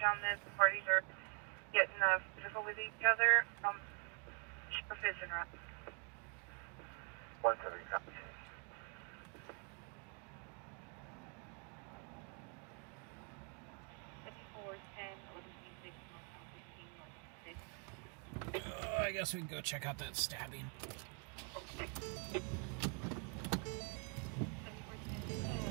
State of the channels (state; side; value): quieter; left; 34.8 dB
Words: on the parties are getting physical with each other. Sheriff is en route. 170. 11, I guess we can go check out that stabbing.